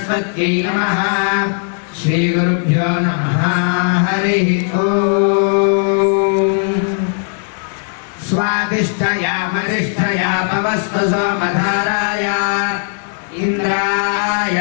నమః. శ్రీ గురుభ్యో నమః. హరి ఓం. స్వాదిష్ఠయామనిష్ఠయా పవస్వ సోమధారాయ ఇంద్రాయ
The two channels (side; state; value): right; silent; digital silence